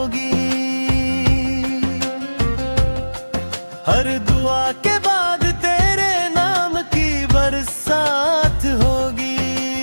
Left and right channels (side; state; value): both; inverted; correlation -1.00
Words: हर दुआ के बाद तेरे नाम की बरसात होगी।